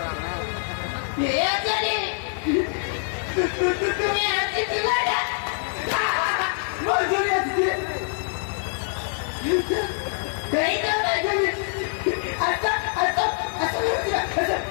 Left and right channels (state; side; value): silent; right; 62 dB below the other